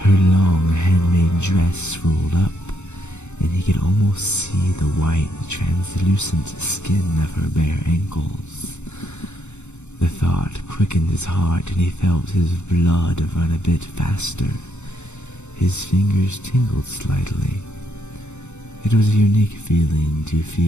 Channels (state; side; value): late; right; 0.83 ms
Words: long handmade dress rolled up, and he could almost see the white, translucent skin of her bare ankles. The thought quickened his heart, and he felt his blood run a bit faster. His fingers tingled slightly. It was a unique feeling to